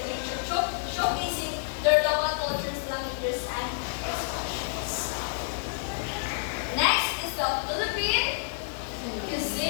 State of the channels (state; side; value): silent; right; 59 dB below the other